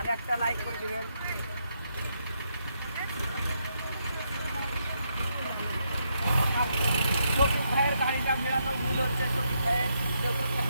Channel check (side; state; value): both; inverted; correlation -0.78